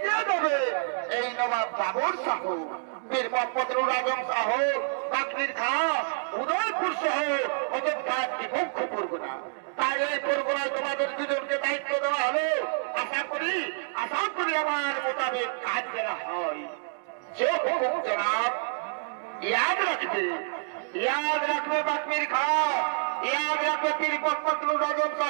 দেবে এই নবাব বাবর শাহ, বীর মোহাম্মদ নুর আজম শাহ, বাকরির খাঁ, উদয়পুর সহ অযোধ্যা একটি মুখ্য পরগনা। তাই এই পরগনায় তোমাদের দুজনকে দায়িত্ব দেওয়া হলো। আশা করি আমার মোতাবেক কাজ করা হয়। যে হুকুম জনাব, याद रखबे बाकमिर खां, याद रखबे पीर मोहम्मद नुर आजम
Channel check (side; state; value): left; silent; digital silence